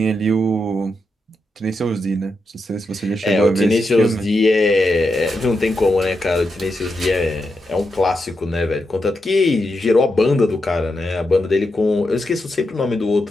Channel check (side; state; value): both; normal; correlation 0.85